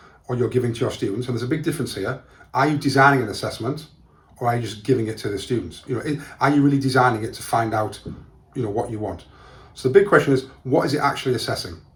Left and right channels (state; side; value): identical; both; correlation 1.00